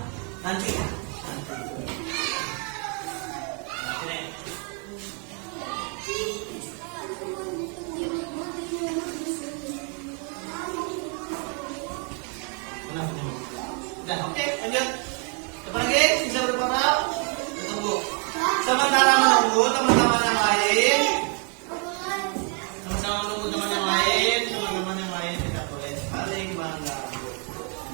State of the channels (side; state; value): left; quieter; 38.9 dB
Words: nanti. Udah, oke, lanjut. Coba lagi, bisa berapa? Tunggu. Sementara menunggu teman-teman yang lain. Sama-sama menunggu teman yang lain, teman-teman yang lain tidak boleh saling mengganggu.